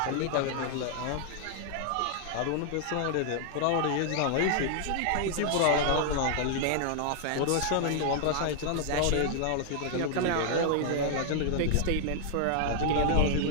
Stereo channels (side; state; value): both; different; correlation 0.00